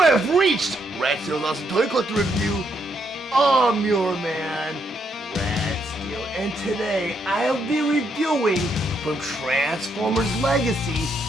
have reached Rat Steele's Awesome Toy Collector Review. I'm your man, Rat Steele, and today I'll be reviewing from Transformers Legacy,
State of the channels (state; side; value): normal; both; correlation 0.76